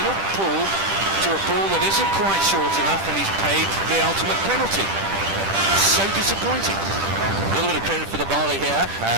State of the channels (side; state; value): left; late; 10 ms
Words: pull to a ball that isn't quite short enough, and he's paid the ultimate penalty. So disappointing. A little bit of credit for the bowler here.